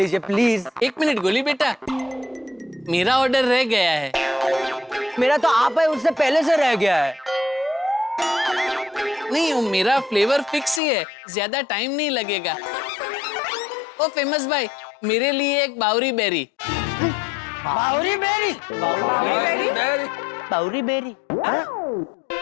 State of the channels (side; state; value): right; drops out; at 10.8 s